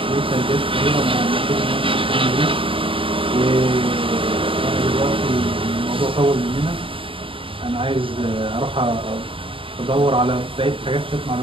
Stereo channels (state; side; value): late; left; 0.26 ms